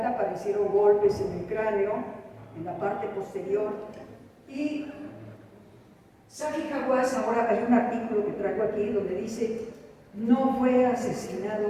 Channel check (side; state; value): both; identical; correlation 1.00